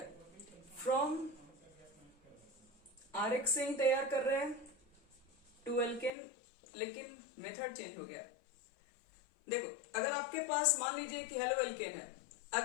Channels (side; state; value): right; drops out; at 6.1 s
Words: फ्रॉम आरएक्स से ही तैयार कर रहे हैं टू एल्केन, लेकिन मेथड चेंज हो गया। देखो अगर आपके पास मान लीजिए कि हेलो एल्केन है,